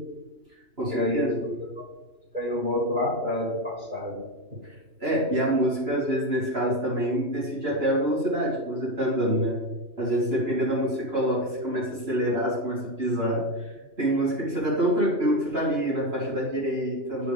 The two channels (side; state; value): left; late; 2.9 ms